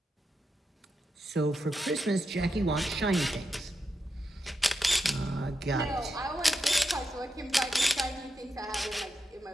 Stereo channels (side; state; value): both; normal; correlation 0.86